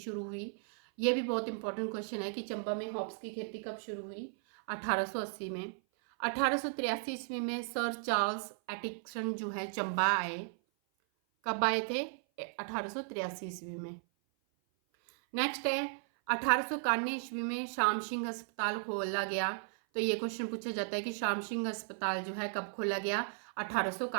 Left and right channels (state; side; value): silent; left; 54 dB below the other